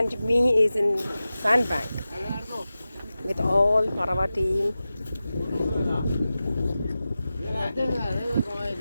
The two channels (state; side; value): inverted; both; correlation -0.94